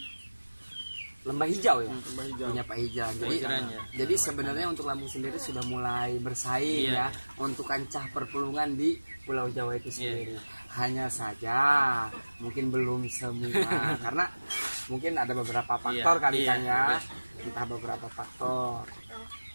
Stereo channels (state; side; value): inverted; both; correlation -1.00